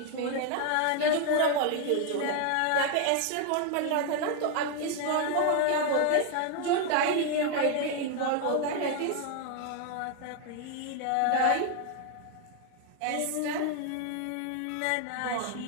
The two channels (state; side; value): different; both; correlation 0.00